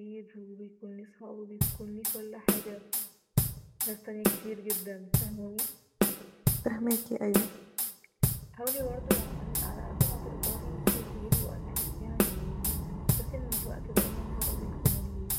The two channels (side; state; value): both; identical; correlation 1.00